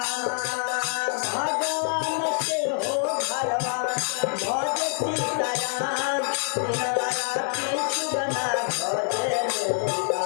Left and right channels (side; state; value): right; silent; digital silence